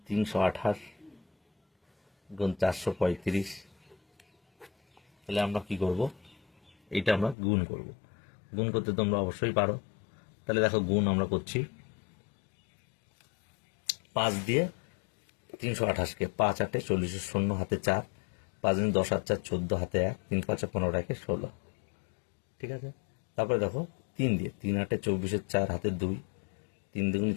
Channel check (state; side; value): drops out; right; at 7.4 s